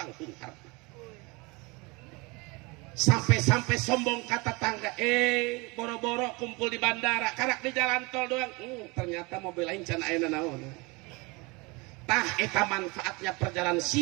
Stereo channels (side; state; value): left; quieter; 26.4 dB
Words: Sampai-sampai sombong kata tangga, boro-boro kumpul di bandara, karak di jalan tol doang. Ternyata mobil lain can ayeuna naon. Tah eta manfaatnya perjalanan